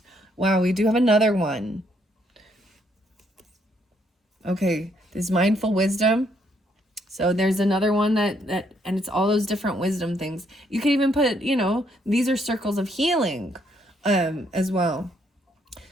Wow, we do have another one. Okay, this mindful wisdom. So there's another one that and it's all those different wisdom things. You could even put, you know, these are circles of healing as well.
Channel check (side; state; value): both; normal; correlation 0.71